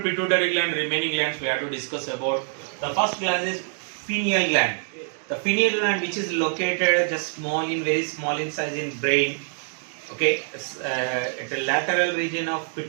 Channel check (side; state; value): left; silent; 58 dB below the other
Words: gland, remaining glands we have to discuss about. The first gland is pineal gland. The pineal gland, which is located just very small in size in brain. Okay, at the lateral region of